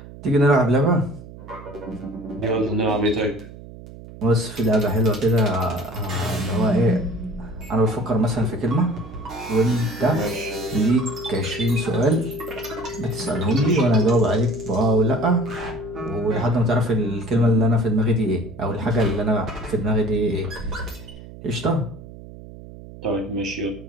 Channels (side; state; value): right; noise; hum, 16 dB below the sound